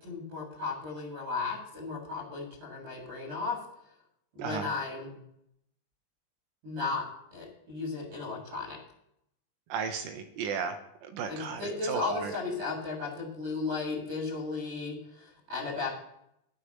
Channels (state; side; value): late; left; 20 ms